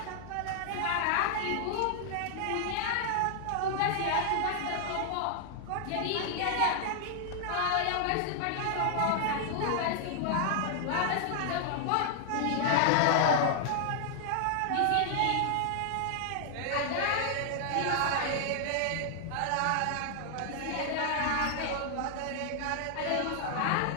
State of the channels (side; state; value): both; different; correlation 0.00